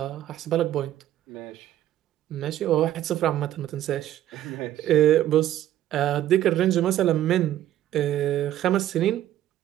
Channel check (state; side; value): quieter; left; 12.7 dB